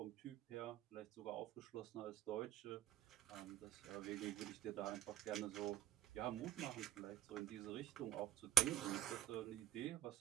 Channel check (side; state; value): left; quieter; 11.7 dB